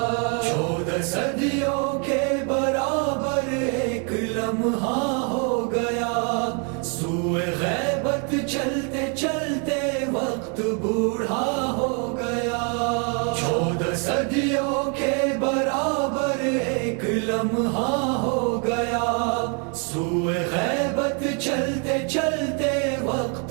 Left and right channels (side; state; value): left; quieter; 37.9 dB